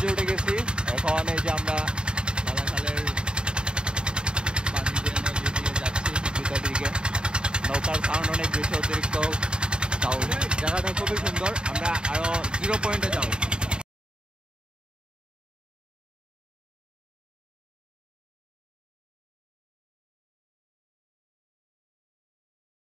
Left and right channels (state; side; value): late; left; 0.050 ms